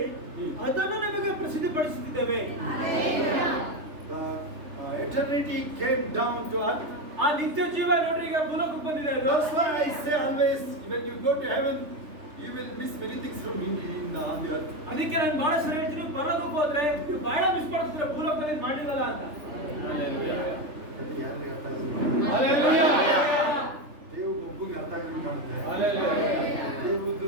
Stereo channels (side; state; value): left; late; 3.3 ms